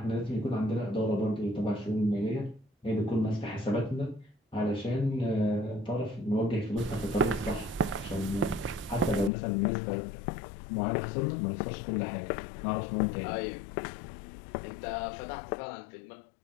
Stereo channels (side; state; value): right; drops out; at 9.3 s